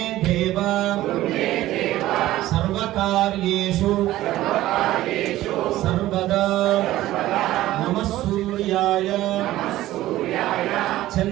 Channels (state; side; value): quieter; left; 15.3 dB